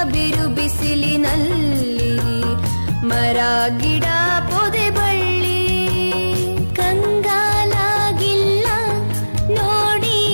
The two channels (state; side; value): inverted; both; correlation -1.00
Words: ಬಿರು ಬಿಸಿಲಿನಲ್ಲಿ ಮರ ಗಿಡ ಪೊದೆ ಬಳ್ಳಿ. ಕಂಗಾಲಾಗಿಲ್ಲ ನೋಡಿ